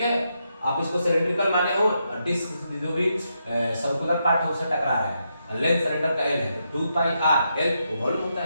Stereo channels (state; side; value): inverted; both; correlation -0.82